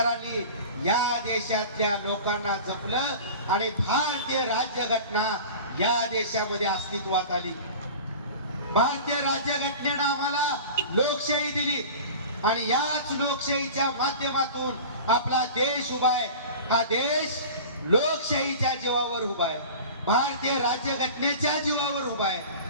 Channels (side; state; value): both; inverted; correlation -0.36